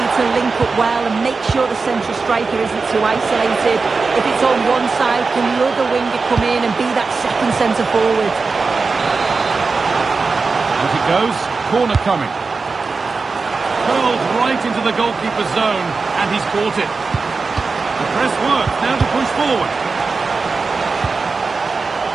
to link up well and make sure the central striker isn't too isolated. If it's on one side, can the other winger come in and be that second centre forward? As it goes, corner coming. Curled right into the goalkeeper's zone, and he's caught it. The press works, now to push forward.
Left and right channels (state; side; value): quieter; left; 4.3 dB